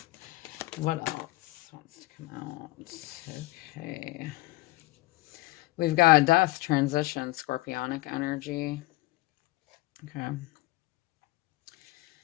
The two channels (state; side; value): quieter; right; 19.6 dB